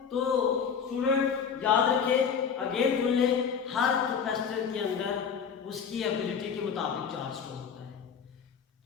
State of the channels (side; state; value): right; quieter; 6.8 dB